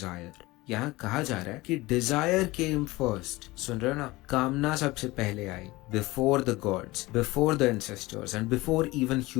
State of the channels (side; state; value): right; quieter; 20.7 dB